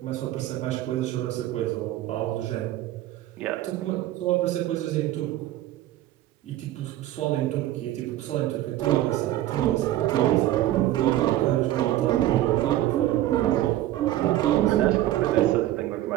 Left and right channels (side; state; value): left; quieter; 14.4 dB